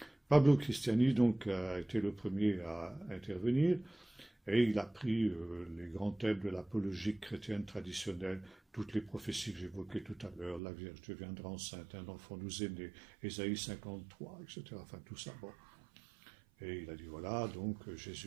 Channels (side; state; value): left; drops out; at 10.6 s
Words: Pablo Cristiani, donc, a été le premier à intervenir, et il a pris les grands thèmes de l'apologie chrétienne traditionnelle, toutes les prophéties que j'évoquais tout à l'heure, la Vierge deviendra enceinte, un enfant nous est né, Ésaïe 53, etc. Enfin, tout ça, bon. Et il a dit, voilà, donc